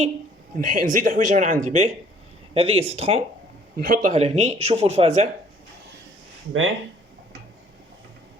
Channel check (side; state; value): both; normal; correlation 0.58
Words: نزيد حويجه من عندي. باهي هذه ستخون نحطها لهني. شوفوا الفازه. باهي